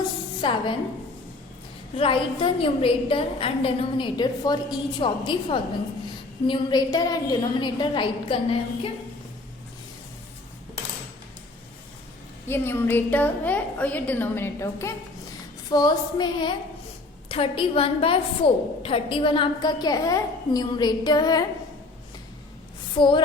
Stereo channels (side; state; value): right; quieter; 3.1 dB